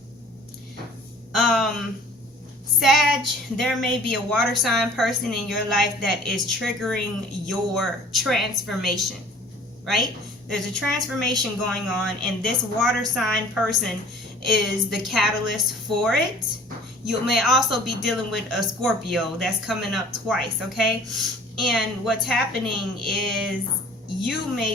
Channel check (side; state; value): both; normal; correlation 0.50